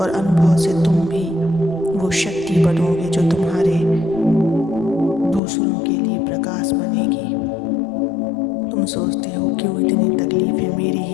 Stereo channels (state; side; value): drops out; right; at 5.4 s